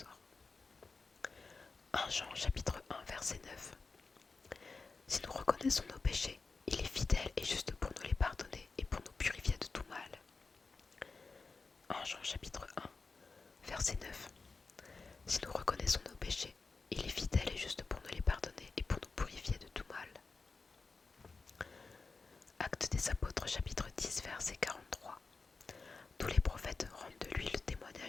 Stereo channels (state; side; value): quieter; right; 4.2 dB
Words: 1 Jean chapitre 1 verset 9. Si nous reconnaissons nos péchés, il est fidèle et juste pour nous les pardonner et pour nous purifier de tout mal. 1 Jean chapitre 1 verset 9. Si nous reconnaissons nos péchés, il est fidèle et juste pour nous les pardonner et pour nous purifier de tout mal. Actes des apôtres chapitre 10 verset 43. Tous les prophètes rendent de lui le